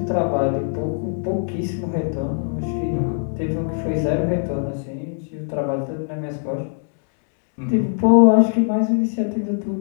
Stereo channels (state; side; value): silent; right; digital silence